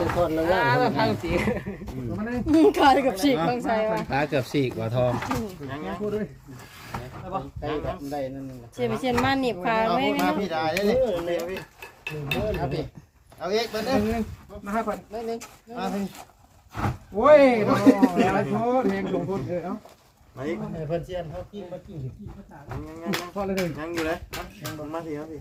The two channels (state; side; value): identical; both; correlation 1.00